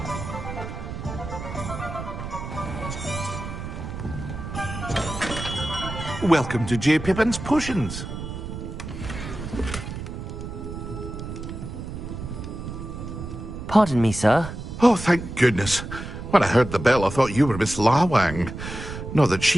Welcome to J. Pippin's Potions. Pardon me, sir. Oh, thank goodness. When I heard the bell, I thought you were Miss Lawang. Not that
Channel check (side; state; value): right; noise; rumble, 8 dB below the sound